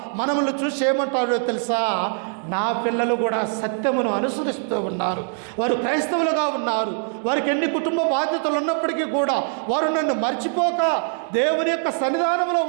మనల్ని చూసి ఏమంటాడో తెలుసా? నా పిల్లలు కూడా సత్యమును అనుసరిస్తూ ఉన్నారు, వారు క్రైస్తవులుగా ఉన్నారు, వారికి ఎన్ని కుటుంబ బాధ్యతలు ఉన్నప్పటికీ కూడా వారు నన్ను మర్చిపోక దేవుని యొక్క సన్నిధానంలో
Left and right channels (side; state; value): left; silent; 59 dB below the other